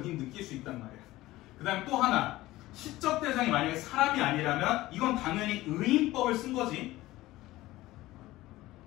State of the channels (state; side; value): quieter; right; 17.4 dB